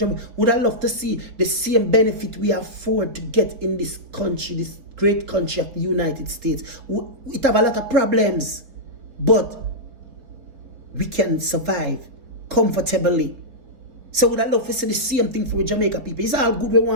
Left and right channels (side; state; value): left; late; 3.9 ms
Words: Would I love to see the same benefit we afford to get in this country, this great country of the United States. It have a lot of problems, but we can survive comfortably. So would I love to see the same thing for Jamaica people? It's all good we